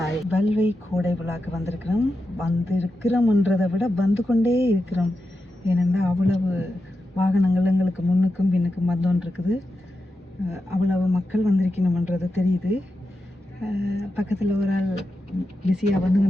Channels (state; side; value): normal; both; correlation 0.89